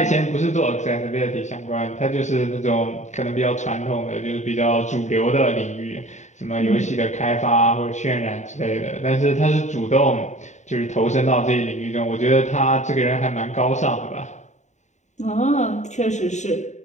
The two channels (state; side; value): late; right; 0.34 ms